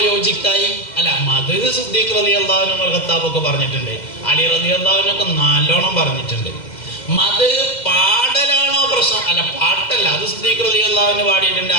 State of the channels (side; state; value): right; late; 2.1 ms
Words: യോജിക്കായി? അല്ല, മദ് സിദ്ദീഖ് റളിയല്ലാഹു അൻഹു ഖത്താബൊക്കെ പറഞ്ഞിട്ടുണ്ട്, അലി റളിയല്ലാഹു അൻഹു ഒക്കെ നല്ലോണം പറഞ്ഞിട്ടുണ്ട്. മദ് പാടലാണോ പ്രശ്നം? അല്ല, പാട്ടല്ല. അത് സിദ്ദീഖ് റളിയല്ലാഹു അൻഹു പാടിയിട്ടുണ്ട്,